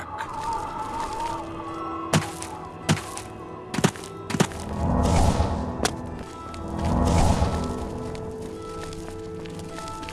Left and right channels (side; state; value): both; identical; correlation 1.00